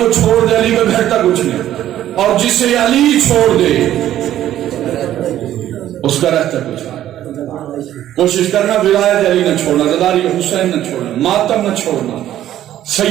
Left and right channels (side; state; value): left; quieter; 12.3 dB